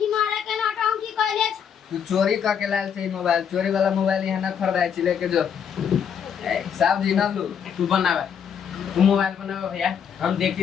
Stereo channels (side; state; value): right; quieter; 7.8 dB